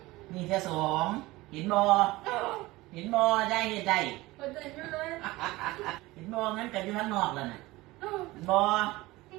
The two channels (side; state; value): left; quieter; 19.8 dB